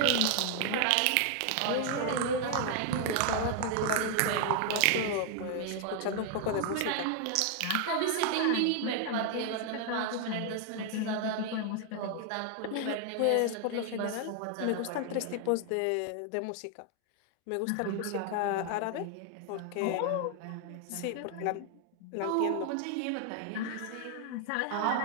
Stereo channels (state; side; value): different; both; correlation 0.00